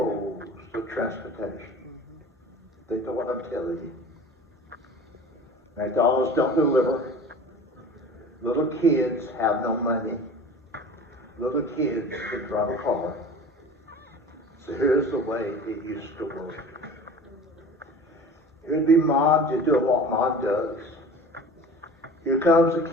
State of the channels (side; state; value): both; normal; correlation 0.40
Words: the transportation. Think of what I'm telling you. McDonald's don't deliver. Little kids have no money. Little kids can drive a car. So here's the way it used to work. Here'd be mom just doing what mom does. Here comes a